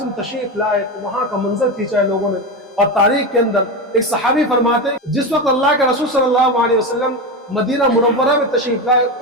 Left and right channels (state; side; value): normal; both; correlation 0.18